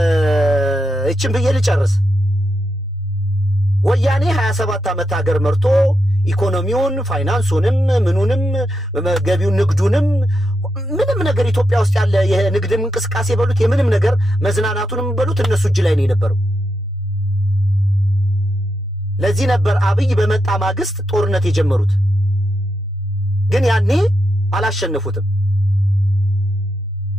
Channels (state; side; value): normal; both; correlation 0.85